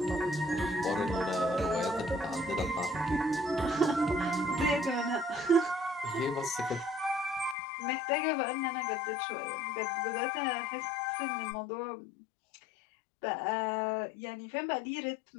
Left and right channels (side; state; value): right; drops out; at 7.6 s